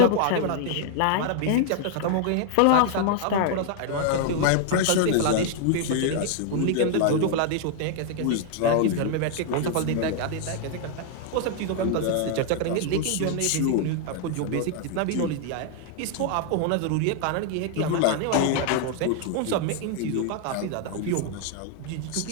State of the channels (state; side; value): different; both; correlation 0.00